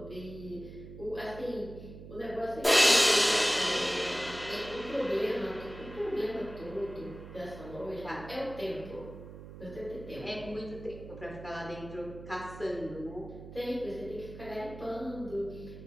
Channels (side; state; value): right; noise; hum, 13 dB below the sound